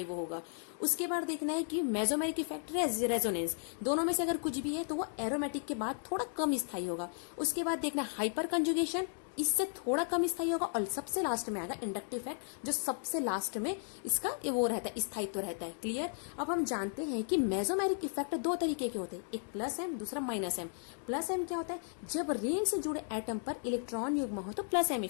वो होगा। उसके बाद देखना है कि मेसोमेरिक इफेक्ट, रेजोनेंस, दोनों में से अगर कुछ भी है तो वो एरोमेटिक के बाद थोड़ा कम स्थायी होगा। उसके बाद देखना हाइपर कंजुगेशन, इससे थोड़ा कम स्थायी होगा। और सबसे लास्ट में आएगा इंडक्टिव इफेक्ट, जो सबसे लास्ट में इसका वो रहता है, स्थायित्व रहता है। क्लियर। अब हम जानते हैं कि मेसोमेरिक इफेक्ट 2 तरीके के होते हैं, एक प्लस एम, दूसरा माइनस एम। प्लस एम क्या होता है? जब रिंग से जुड़े एटम पर इलेक्ट्रॉन युग्म हो तो प्लस एम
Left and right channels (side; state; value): right; silent; 54 dB below the other